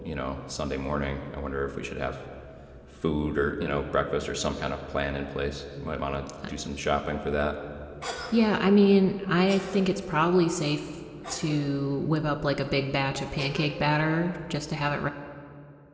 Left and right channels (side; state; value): both; identical; correlation 1.00